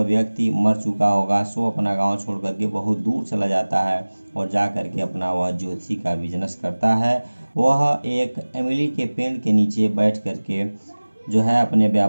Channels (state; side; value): inverted; both; correlation -1.00